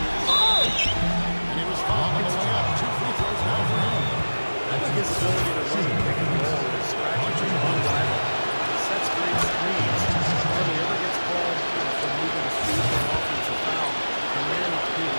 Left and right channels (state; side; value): inverted; both; correlation -1.00